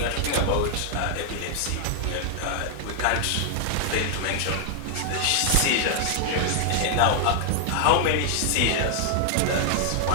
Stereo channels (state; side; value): different; both; correlation 0.00